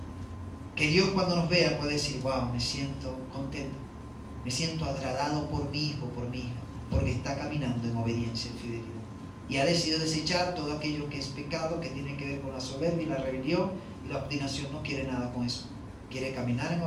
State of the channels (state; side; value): identical; both; correlation 1.00